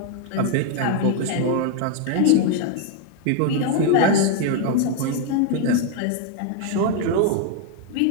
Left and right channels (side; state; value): both; different; correlation 0.01